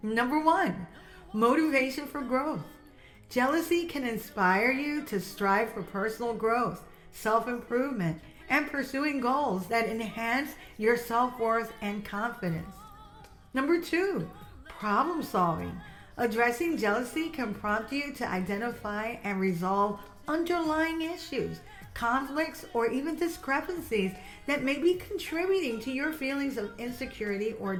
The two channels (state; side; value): identical; both; correlation 1.00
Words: Number 1, motivation for growth. Jealousy can inspire you to strive for personal growth, self-improvement, and pursuing goals that enhance your self-worth and confidence. Number 2, problem solving. Addressing jealousy can prompt you to identify and resolve underlying issues, conflicts, or even discrepancies that may be contributing to your feelings of insecurity or